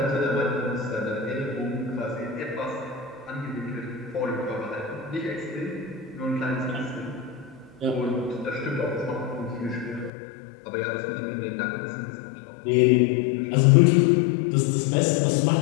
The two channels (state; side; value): drops out; right; at 10.1 s